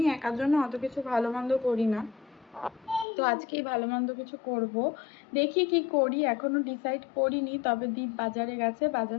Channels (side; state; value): right; drops out; at 3.1 s